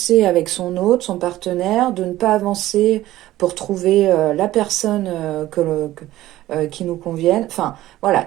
avec son hôte, son partenaire, de ne pas avancer pour trouver la personne qui nous convienne. Enfin,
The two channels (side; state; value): left; quieter; 15.3 dB